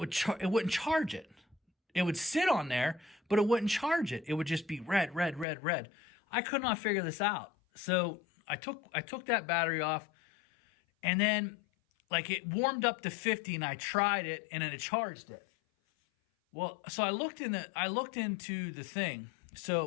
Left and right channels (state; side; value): drops out; right; at 5.5 s